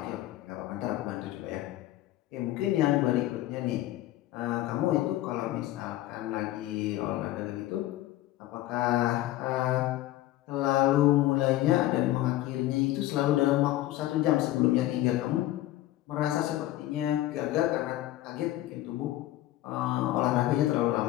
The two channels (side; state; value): right; quieter; 15.2 dB